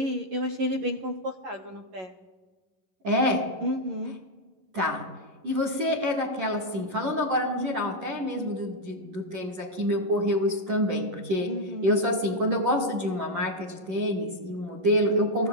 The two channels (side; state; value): left; late; 11 ms